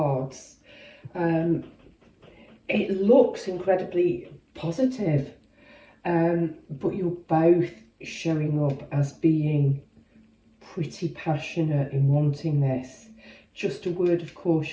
It looks incredibly positive, but you're both showing up as being pretty passionate in wanting this. Just a word of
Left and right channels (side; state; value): both; identical; correlation 1.00